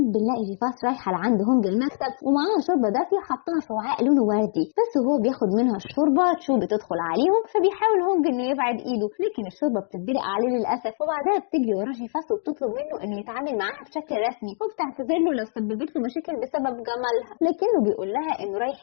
بنلاقي جيفاس رايحه لعند هونج المكتب ومعاها شوربه دافيه حطها في وعاء لونه وردي، بس وهو بياخد منها الشوربه تشو بتدخل عليهم، فبيحاول هونج انه يبعد ايده، لكن الشوربه بتتدلق عليه للاسف. وبعدها بتجري ورا جيفاس وبتطلب منه انه يتعامل معاها بشكل رسمي، وبتعتذر له لو سببت له مشاكل بسبب جمالها، لكنه بيقول لها انه رايح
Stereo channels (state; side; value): silent; right; 57 dB below the other